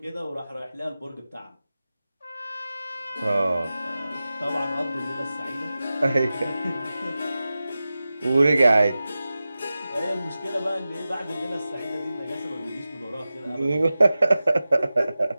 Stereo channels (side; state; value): both; inverted; correlation -0.95